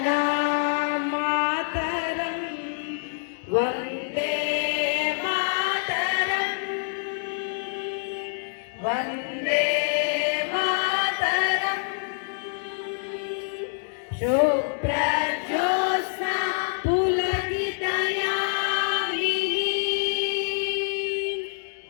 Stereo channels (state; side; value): silent; right; digital silence